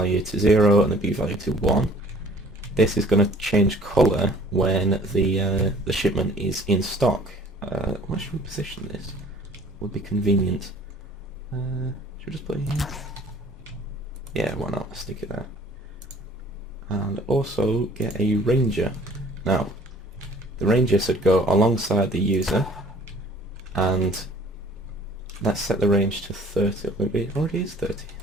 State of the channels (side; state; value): both; normal; correlation 0.53